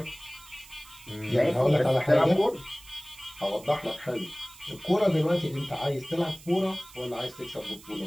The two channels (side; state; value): right; noise; hiss, 21 dB below the sound